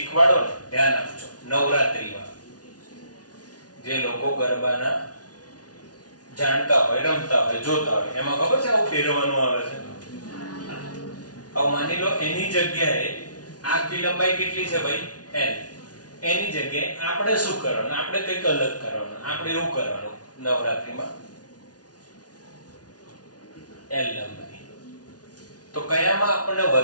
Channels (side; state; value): right; late; 0.69 ms